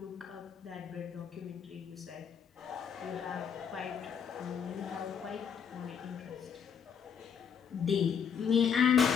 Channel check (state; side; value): quieter; right; 7.2 dB